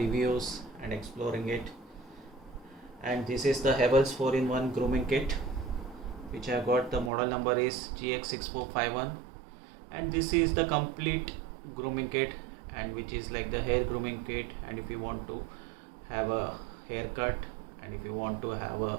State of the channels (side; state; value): left; drops out; at 7.1 s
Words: and exploring it. And this is the Havells 4-in-1 grooming kit, which I got. The model number is GX6451. And this is the complete grooming kit, and which is like the hair grooming kit. And if you want to have a haircut, and if you want to have a